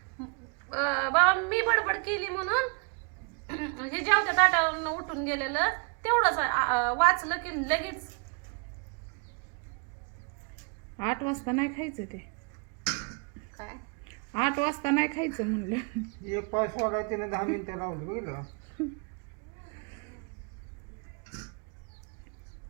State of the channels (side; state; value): left; quieter; 36.6 dB